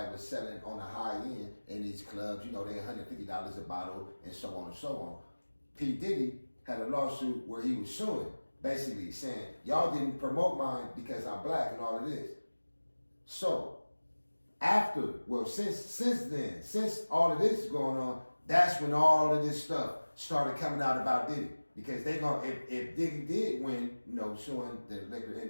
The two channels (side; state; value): both; inverted; correlation -1.00